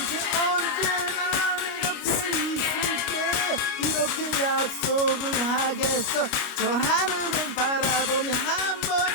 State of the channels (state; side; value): late; right; 29 ms